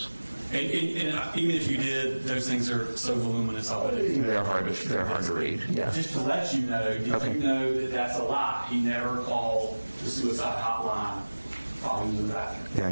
And even if you did, those things are so voluminous. I wouldn't. They're hard to read. Yeah. Just to let you know, did Okay. you know that that's a lie? He never called the suicide hotline while he was in the bathroom. Yeah,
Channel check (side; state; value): both; inverted; correlation -1.00